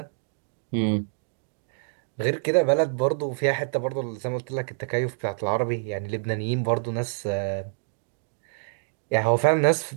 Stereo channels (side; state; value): left; silent; digital silence